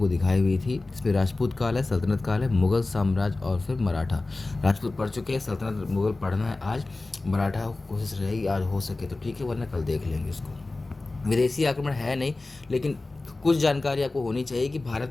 दिखाई हुई थी। इसमें राजपूत काल है, सल्तनत काल है, मुग़ल साम्राज्य और फिर मराठा। राजपूत पढ़ चुके हैं, सल्तनत मुग़ल पढ़ना है आज। मराठा कोशिश रहेगी आज हो सके तो ठीक है, वरना कल देख लेंगे इसको। विदेशी आक्रमण है नहीं, लेकिन कुछ जानकारी आपको होनी चाहिए कि भारत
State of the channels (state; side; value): quieter; right; 3.2 dB